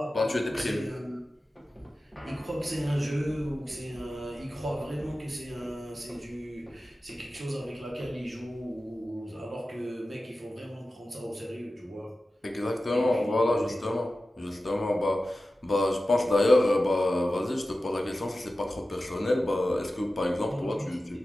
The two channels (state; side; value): normal; both; correlation 0.94